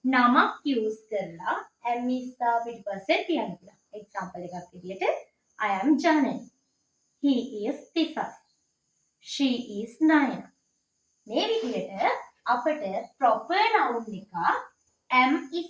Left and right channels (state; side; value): identical; both; correlation 1.00